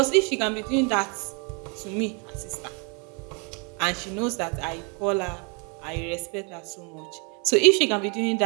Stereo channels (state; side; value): quieter; left; 34.5 dB